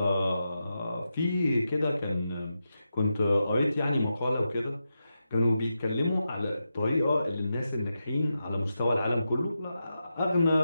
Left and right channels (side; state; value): both; inverted; correlation -0.88